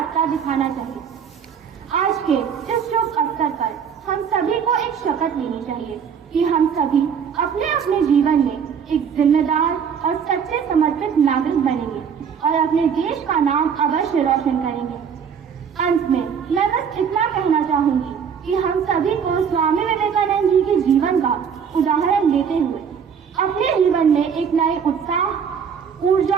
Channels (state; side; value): quieter; left; 7.1 dB